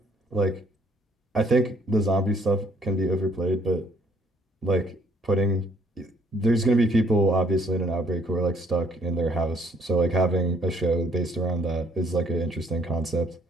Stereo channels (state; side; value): normal; both; correlation 0.64